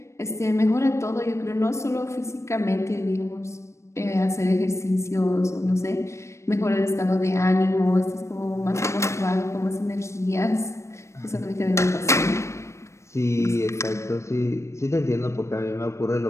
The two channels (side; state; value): right; late; 0.14 ms